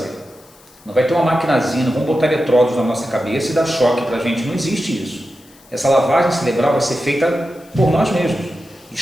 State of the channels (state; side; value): noise; left; hiss, 27 dB below the sound